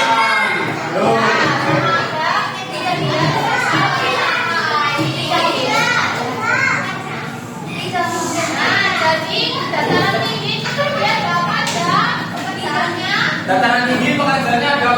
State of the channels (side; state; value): both; identical; correlation 1.00